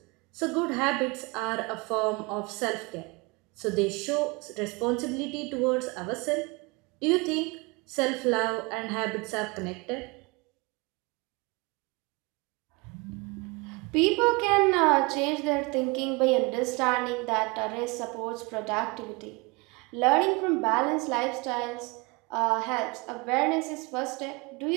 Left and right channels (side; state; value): left; quieter; 27.2 dB